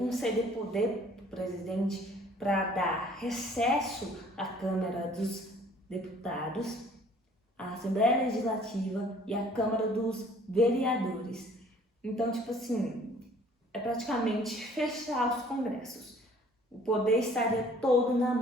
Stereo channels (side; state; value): both; normal; correlation 0.55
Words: poder para o presidente para dar recesso à Câmara dos Deputados, à Assembleia Legislativa e à Câmara dos Vereadores. Então, tipo assim, é praticamente fechar os congressos. O poder estaria todo na